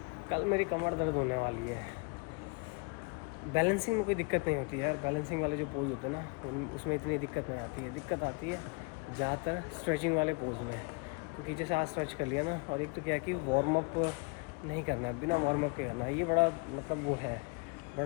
कल मेरी कमर दर्द होने वाली है। बैलेंसिंग में कोई दिक्कत नहीं होती यार, बैलेंसिंग वाले जो पोज होते हैं ना उसमें इतनी दिक्कत नहीं आती है। दिक्कत आती है ज़्यादातर स्ट्रेचिंग वाले पोज में, क्योंकि जैसे आज स्ट्रेच कर लिया ना, और एक तो क्या कि वार्म अप नहीं करना है, बिना वार्म अप के करना है। ये बड़ा मतलब वो है,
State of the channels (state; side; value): quieter; right; 32.5 dB